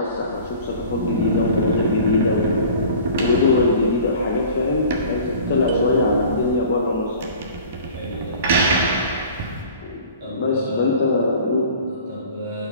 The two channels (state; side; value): inverted; both; correlation -0.44